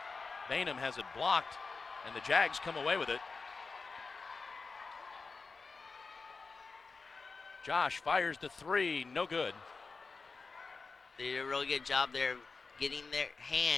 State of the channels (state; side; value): quieter; right; 4.4 dB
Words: Bainham has it blocked, and the Jags come away with it. Josh fires the three, no good. They did a really good job there of getting their